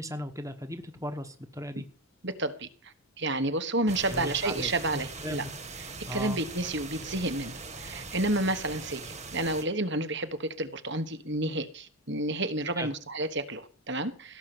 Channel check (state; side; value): normal; both; correlation 0.14